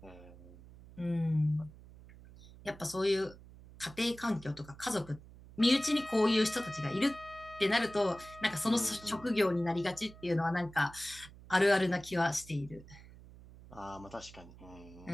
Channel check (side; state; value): right; noise; hum, 19 dB below the sound